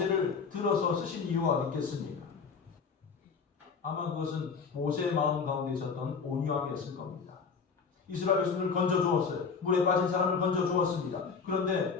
들어서 쓰신 이유가 어디 있겠습니까? 아마 그것은 모세의 마음 가운데 있었던 온유함이었을 겁니다. 이스라엘 백성들을 건져주었어요. 물에 빠진 사람을 건져주었습니다.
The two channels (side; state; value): right; quieter; 5.4 dB